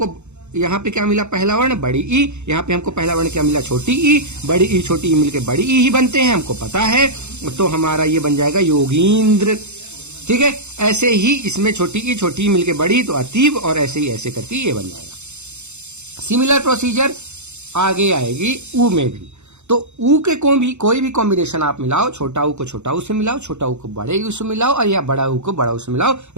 यहाँ पे क्या मिला, पहला वर्ण बड़ी ई, यहाँ पे हमको पहला वर्ण क्या मिला, छोटी ई। बड़ी ई छोटी ई मिलके बड़ी ई ही बनते हैं, हमको पता है, तो हमारा ये बन जाएगा योगींद्र। ठीक है, ऐसे ही इसमें छोटी ई मिलके बड़ी तो अतीब, और ऐसे ही ऐसे करके ये बन जाएगा। सिमिलर प्रोसीजर आगे आएगी ऊ में भी। तो ऊ के कोई भी कॉम्बिनेशन आप मिलाओ, छोटा ऊ को छोटा ऊ से मिलाओ, छोटा ऊ को बड़े ऊ से मिलाओ, और या बड़ा ऊ को बड़ा ऊ से मिलाओ,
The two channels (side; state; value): left; late; 0.82 ms